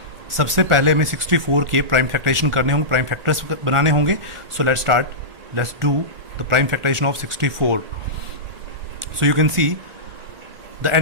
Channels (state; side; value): late; left; 1.4 ms